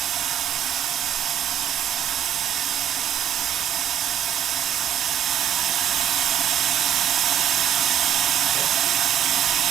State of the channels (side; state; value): left; quieter; 10.3 dB